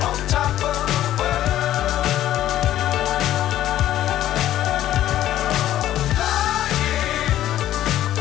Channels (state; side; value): quieter; right; 12.8 dB